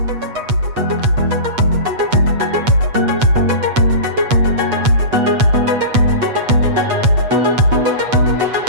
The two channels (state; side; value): late; left; 8.2 ms